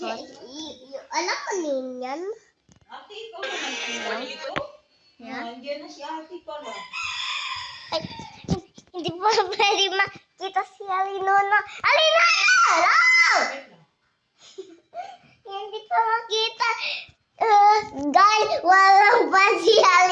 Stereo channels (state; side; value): identical; both; correlation 1.00